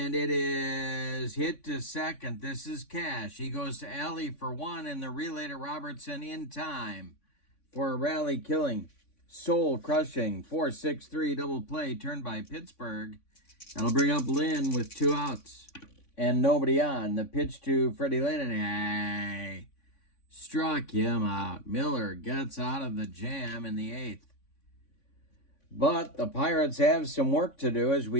it is hit to second. This is Cash. He goes to Alley for 1, and the relay to Robertson in time for a rally-killing, soul-crushing 4-6-3 double play turned by Pittsburgh. That'll bring up Lynn with 2 outs and nobody on. The pitch to Freddie Lynn, struck him out. Miller gets out of the jam in the 8th. But the Pirates have some work to do as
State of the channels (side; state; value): right; late; 3.5 ms